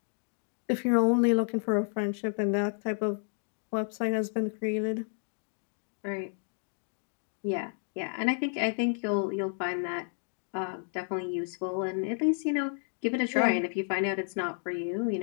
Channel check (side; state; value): right; silent; 56 dB below the other